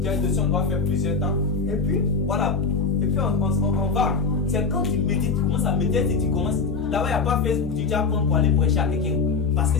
de sang, on doit faire plusieurs temps. Et puis, voilà. Et puis, on va. C'est quand tu médites, tu commences à méditer et tu commences. Là-bas, il n'y a pas Facebook, tu vas prendre pour aller prêcher à quelqu'un. Parce que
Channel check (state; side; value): quieter; right; 4.6 dB